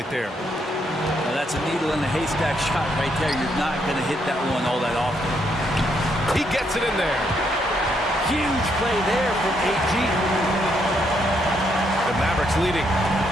there. Now that's a needle in the haystack shot right there. You're not going to hit that one all that often. He gets it in there. Huge play there from AG. The Mavericks leading.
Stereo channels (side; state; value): both; normal; correlation 0.75